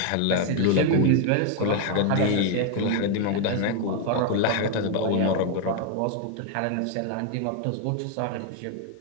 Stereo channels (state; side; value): different; both; correlation 0.01